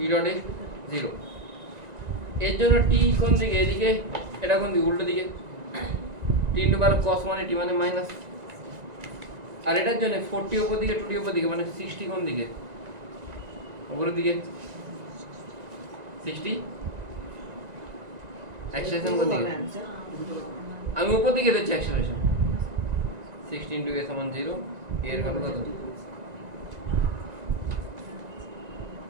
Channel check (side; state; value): left; late; 1.9 ms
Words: ডট এ 0, এর জন্য টি কোন দিকে? এদিকে, এটা কোন দিকে? উল্টো দিকে। টি ইন্টু বার কস মানে টি মানে মাইনাস, আর এটার জন্য 40 উপর দিকে 2t উপর দিকে মানে 60 কোন দিকে? উপরের দিকে 60। অ্যাক্সিলারেশন কোন দিকে? আমি উপর দিকে দিচ্ছি অ্যাক্সিলারেশন। 60 ইন্টু a সমান 0, এর ভ্যালু কত?